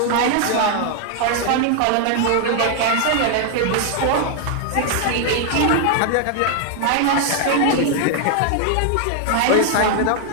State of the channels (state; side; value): different; both; correlation 0.00